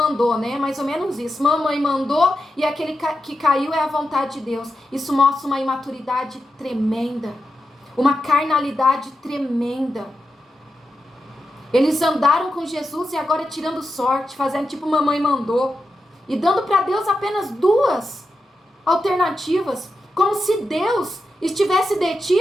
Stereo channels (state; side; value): normal; both; correlation 0.88